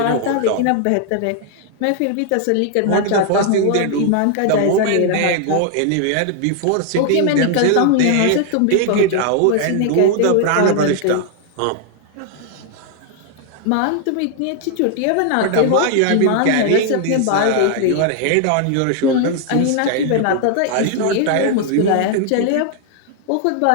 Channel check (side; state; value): both; different; correlation 0.00